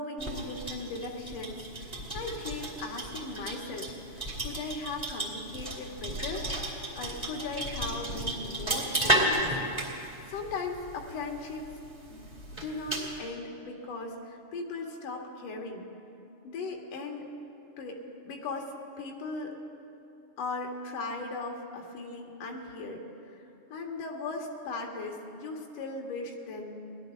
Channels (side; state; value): right; late; 7.0 ms